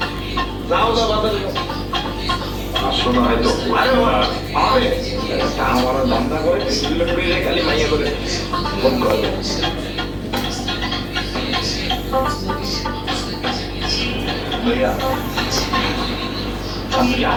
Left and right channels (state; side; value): identical; both; correlation 1.00